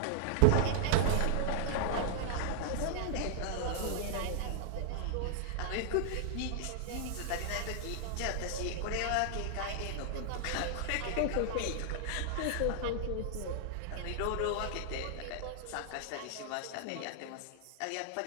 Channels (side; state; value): both; different; correlation -0.01